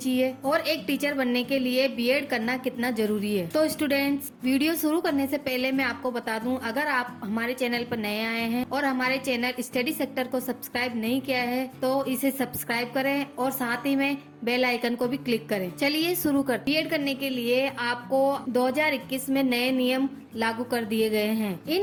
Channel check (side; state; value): both; identical; correlation 1.00